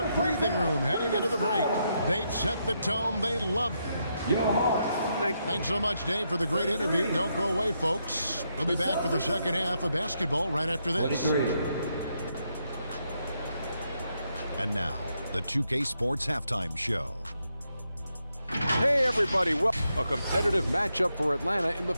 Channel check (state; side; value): inverted; both; correlation -0.80